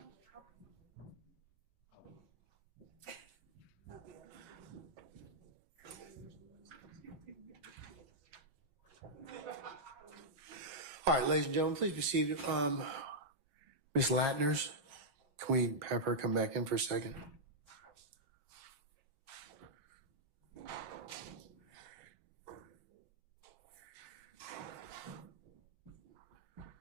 All right, ladies and gentlemen, please be seated. Ms. Latners, can we have her come back in for a second?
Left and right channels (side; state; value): left; late; 7.3 ms